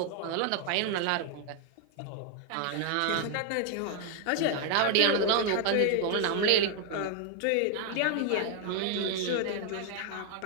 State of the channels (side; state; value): both; different; correlation 0.00